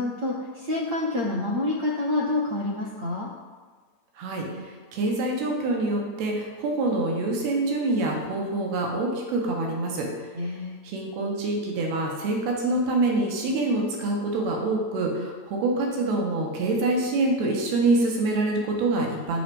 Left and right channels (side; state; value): left; late; 8.8 ms